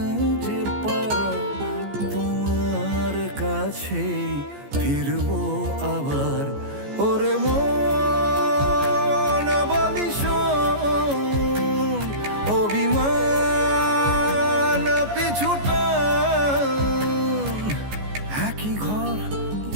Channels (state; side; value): late; left; 14 ms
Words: যে পারা, তোমার কাছে ফিরবো আবার। ওরে মন বলিশন অভিমান পিছুটা, একই ঘর